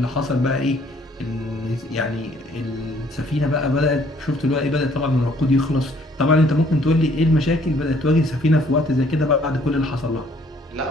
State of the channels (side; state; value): both; normal; correlation 0.62